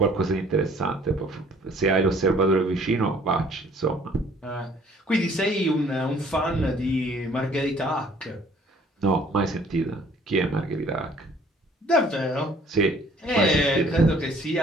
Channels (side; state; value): both; normal; correlation 0.57